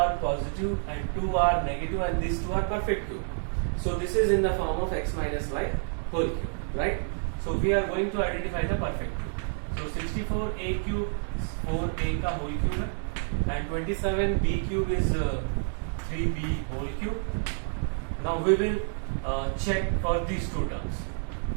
positive and 2 are negative, and these 2 are perfect cube. So this is in the form of x minus y whole cube, right? So we are going to identify the perfect cube. So 64a cube 4a का whole cube है, and 27b cube is 3b whole cube. Now we will check for these two terms.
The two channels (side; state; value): left; silent; 57 dB below the other